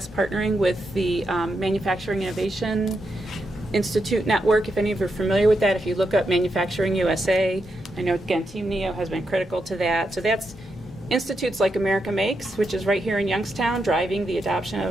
partnering with the Manufacturing Innovation Institute Network. If any of you are familiar with that, if you look up Manufacturing USA, I know, again, Team NEO has been critical to that. So that's institutes like America Makes, which is right here in Youngstown, driving the adoption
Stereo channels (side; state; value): both; normal; correlation 0.84